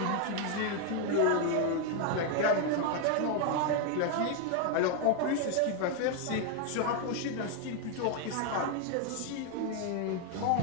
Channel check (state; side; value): different; both; correlation 0.01